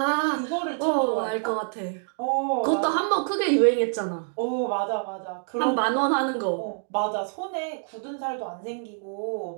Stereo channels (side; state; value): left; silent; 61 dB below the other